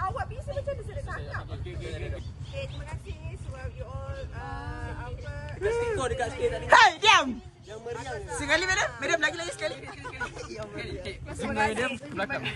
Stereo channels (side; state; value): both; identical; correlation 1.00